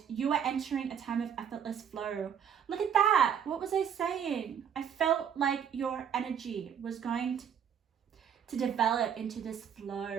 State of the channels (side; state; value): left; quieter; 8.3 dB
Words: You are entering a time of effortless flow. Look at that. What was I saying? I felt like your energy was going to develop into this